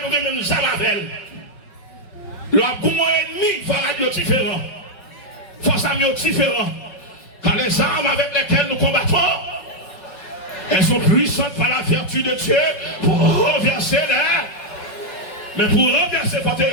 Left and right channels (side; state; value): right; late; 5.4 ms